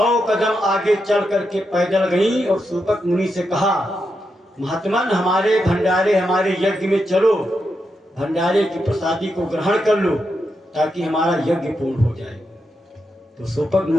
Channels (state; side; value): normal; both; correlation 0.85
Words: कदम आगे चल करके पैदल गई और सूपक मुनि से कहा, महात्मन हमारे भंडारे, हमारे यज्ञ में चलो, भंडारे की प्रसादी को ग्रहण कर लो ताकि हमारा यज्ञ पूर्ण हो जाए। तो सूपक